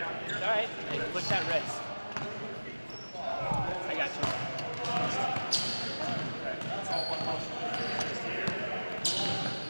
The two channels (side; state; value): both; inverted; correlation -1.00